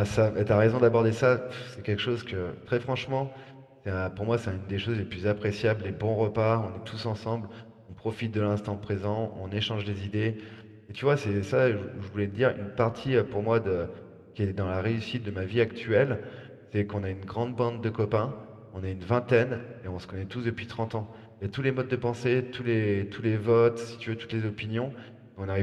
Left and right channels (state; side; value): identical; both; correlation 1.00